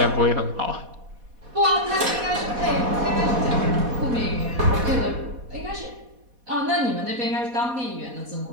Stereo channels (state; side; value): late; left; 4.1 ms